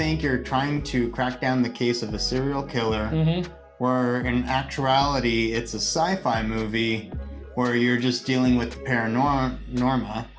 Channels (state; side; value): identical; both; correlation 1.00